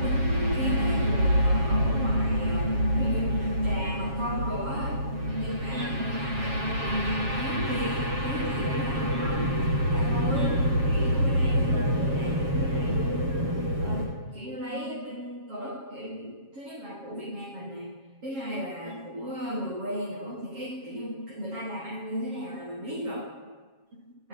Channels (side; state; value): left; late; 7.3 ms